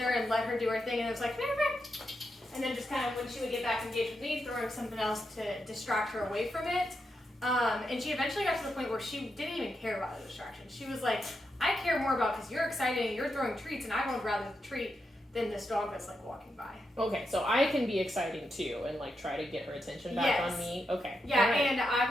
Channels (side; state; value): both; normal; correlation 0.85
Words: and let her do her thing, and it was like, and then just kind of when she would get back engaged with me, throwing something else to distract her away from it. And she eventually got to the point where she didn't even care about the distraction. She was like, I care more about, because you're excited and you're throwing treats, and I would rather the treat than this dog that's like walking by. Okay, so I can be exciting too and like try to get her attention back on me. Okay. Yeah, right. And